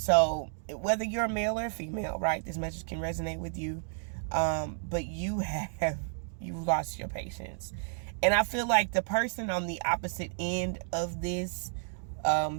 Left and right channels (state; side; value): silent; left; digital silence